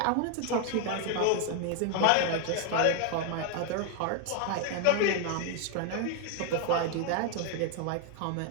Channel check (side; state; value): both; different; correlation 0.01